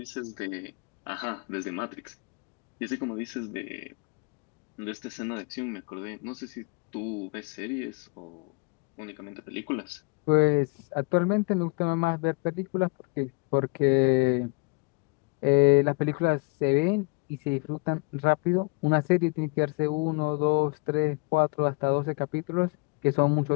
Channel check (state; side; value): quieter; right; 30.1 dB